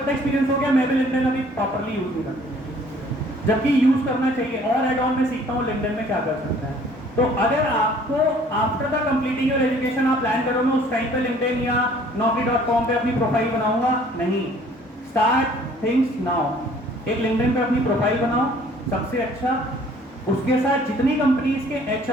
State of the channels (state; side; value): normal; both; correlation 0.56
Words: एक्सपीरियंस हो गया, मैं भी लिंक्डइन अभी प्रॉपर्ली यूज नहीं करता, जबकि यूज करना चाहिए, और एड ऑन में सीखता हूँ लिंक्डइन में क्या कर सकता है। तो अगर आपको after the completing your education आप प्लान करो मैं उस टाइम पे लिंक्डइन या naukri.com पे अपनी प्रोफाइल बनाऊंगा, नहीं, स्टार्ट थिंग्स नाउ। एक लिंक्डइन पे अपनी प्रोफाइल बनाओ सबसे अच्छा, उसके साथ जितनी कंपनीज के